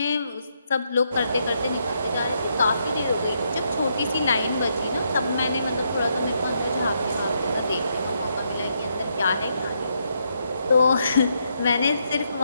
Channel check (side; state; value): both; inverted; correlation -0.78